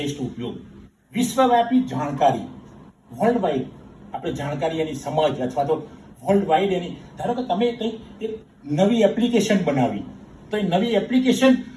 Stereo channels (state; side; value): identical; both; correlation 1.00